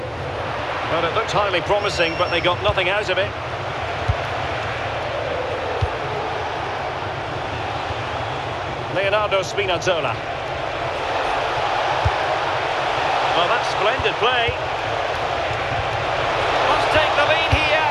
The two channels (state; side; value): identical; both; correlation 1.00